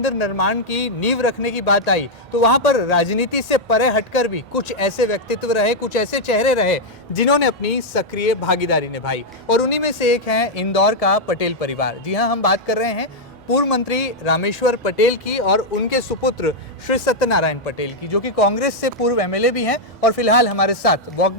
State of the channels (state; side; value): normal; both; correlation -0.02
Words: निर्माण की नींव रखने की बात आई तो वहां पर राजनीति से परे हटकर भी कुछ ऐसे व्यक्तित्व रहे, कुछ ऐसे चेहरे रहे जिन्होंने अपनी सक्रिय भागीदारी निभाई, और उन्हीं में से एक है इंदौर का पटेल परिवार। जी हां, हम बात कर रहे हैं पूर्व मंत्री रामेश्वर पटेल की और उनके सुपुत्र श्री सत्यनारायण पटेल की, जो कि कांग्रेस से पूर्व एमएलए भी हैं और फिलहाल हमारे साथ वॉक